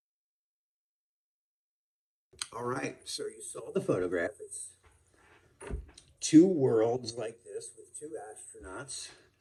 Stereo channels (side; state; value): both; identical; correlation 1.00